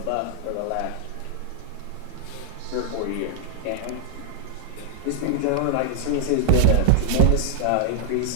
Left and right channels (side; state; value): both; different; correlation -0.01